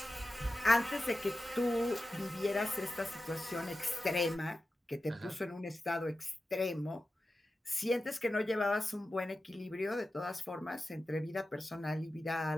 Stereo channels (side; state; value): both; normal; correlation 0.93